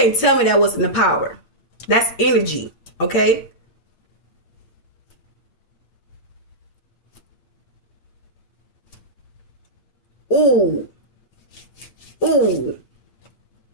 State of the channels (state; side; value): late; right; 8.7 ms